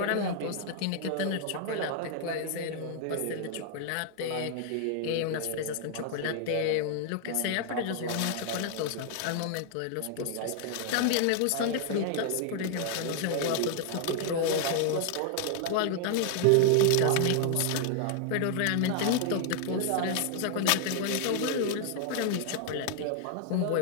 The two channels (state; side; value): different; both; correlation 0.00